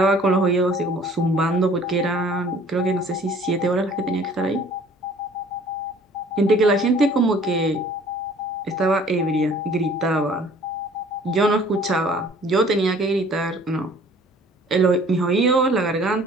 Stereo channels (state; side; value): normal; both; correlation 0.53